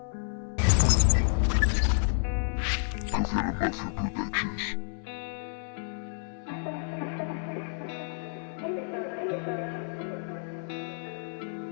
Governo Mafia Productions.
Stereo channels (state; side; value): silent; right; 58 dB below the other